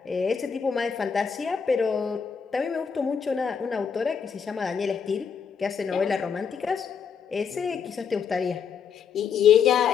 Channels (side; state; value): right; quieter; 6.6 dB